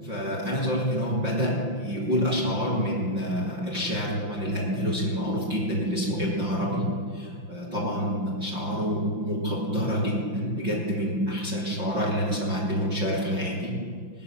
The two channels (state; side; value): late; left; 5.8 ms